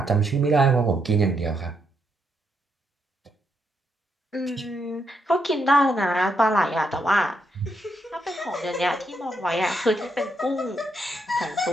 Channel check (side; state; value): both; normal; correlation 0.78